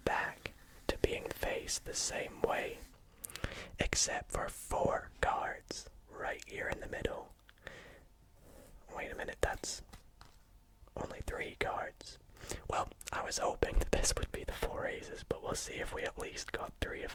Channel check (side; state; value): both; identical; correlation 1.00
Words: back to being faced the same way, except for 4 cards right here in the middle. Wait a minute, that's only 3 cards. Well, I was hoping that this would be the 4 aces, but we'll see if we at least got 3